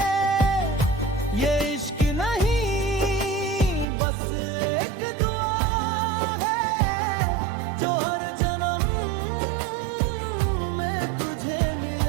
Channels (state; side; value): drops out; left; at 3.9 s